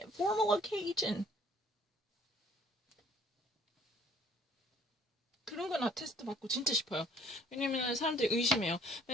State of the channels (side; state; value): both; normal; correlation 0.57